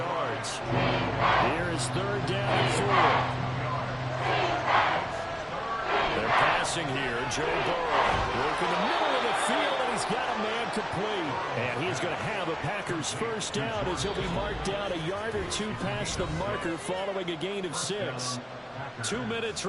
Here is 3rd down and 4. They're passing here. Joe Burrow working the middle of the field, and he's got a man complete. And he's going to have a Packers 1st down as he'll be marked down a yard or 2 past the marker following a gain of 6. 2 minutes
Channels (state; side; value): identical; both; correlation 1.00